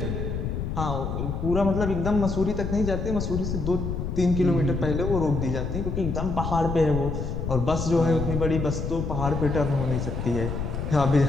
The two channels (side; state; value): left; noise; rumble, 3 dB below the sound